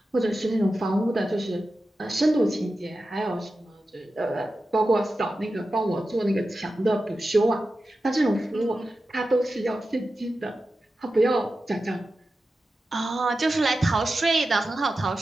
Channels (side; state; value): both; normal; correlation 0.92